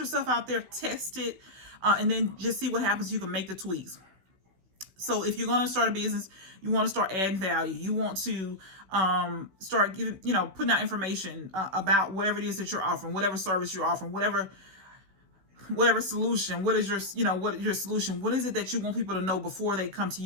out there, test it, and then just see what happens. You can make the tweaks. So if you're going to start a business, you want to start adding value. You want to start giving, putting out information about whatever it is that you're offering, whatever service you're offering, whatever solution. What is your solution? What is it that you want people to know before they come to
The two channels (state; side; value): late; left; 16 ms